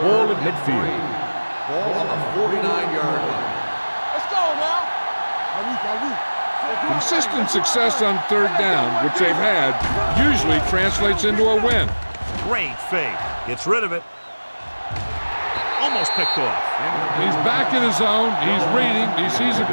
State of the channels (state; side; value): inverted; both; correlation -1.00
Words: at midfield. Ball on the 49-yard line. Let's go now. Consistent success on third down, which they've had, usually translates into a win. Great fake. Gets rid of it. Almost picked off. He's back in his zone, he's reading, he sees the